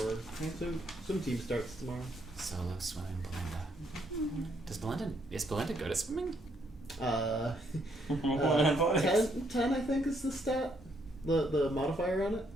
swim team starts tomorrow. Solo swimming Belinda. Is Belinda good at swimming? 10 I think is the stat, the modifier on it.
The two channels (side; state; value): both; normal; correlation 0.72